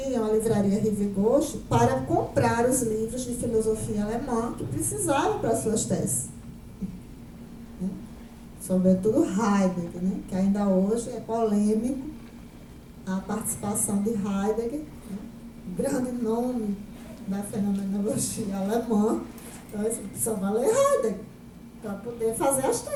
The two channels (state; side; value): identical; both; correlation 1.00